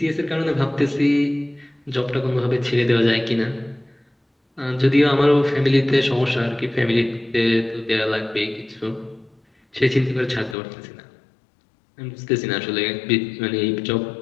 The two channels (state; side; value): drops out; right; at 10.6 s